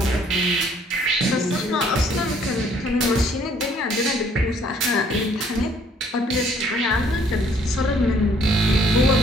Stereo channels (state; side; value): normal; both; correlation 0.62